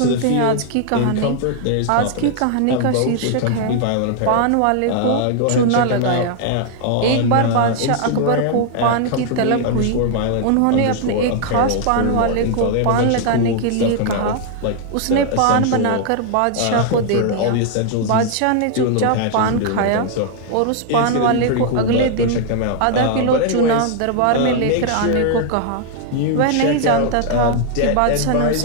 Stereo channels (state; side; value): different; both; correlation 0.00